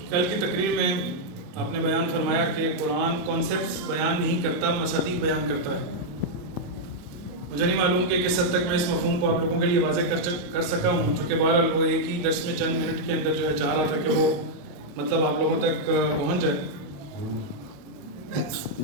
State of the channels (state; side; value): late; left; 28 ms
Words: کل کی تقریر میں آپ نے بیان فرمایا کہ قرآن کانسیپٹس بیان نہیں کرتا، مصادیق بیان کرتا ہے۔ مجھے نہیں معلوم کہ کس حد تک میں اس مفہوم کو آپ لوگوں کے لیے واضح کر سکا ہوں، چونکہ بہرحال وہ ایک ہی درس میں چند منٹ کے اندر جو ہے چاہ رہا تھا کہ وہ مطلب آپ لوگوں تک پہنچ جائے۔